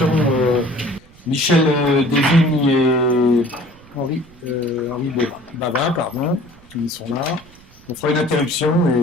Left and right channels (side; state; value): right; noise; rumble, 25 dB below the sound